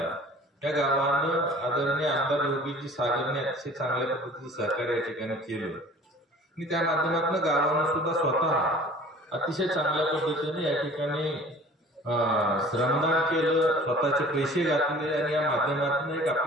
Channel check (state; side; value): normal; both; correlation 0.47